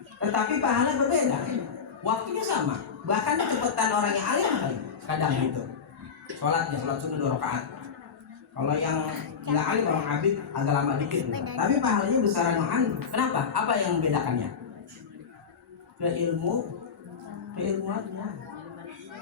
tetapi pahala berbeda, waktunya sama, bahkan kecepatan orang yang alim kadang gitu sholatnya, sholat sunnah 2 rakaat. Kalau yang nggak alim, orang abid agak lama dikit, tapi pahalanya besaran yang alim. Kenapa? Apa yang membedakannya? Keilmuannya.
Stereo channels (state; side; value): quieter; right; 6.2 dB